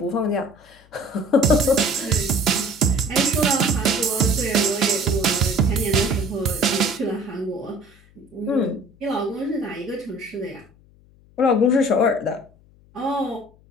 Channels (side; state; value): left; noise; hum, 28 dB below the sound